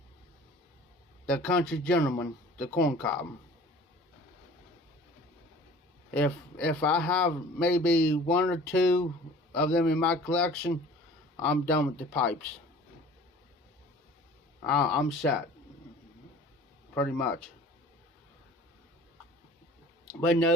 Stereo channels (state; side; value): normal; both; correlation 0.46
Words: the Country Gentleman, the corn cob. If I have maybe 1 or 2 of them in my collection, I'm done with the pipes. I'm set, pretty much. But